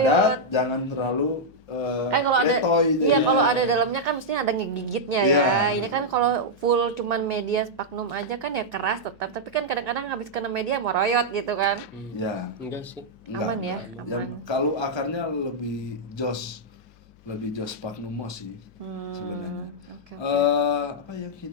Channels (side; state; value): left; noise; hum, 27 dB below the sound